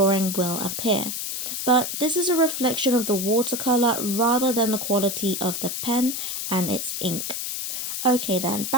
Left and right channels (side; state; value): left; noise; hiss, 4 dB below the sound